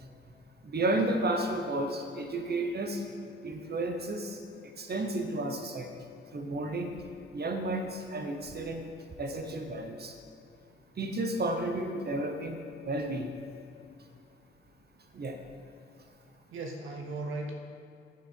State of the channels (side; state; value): both; normal; correlation 0.40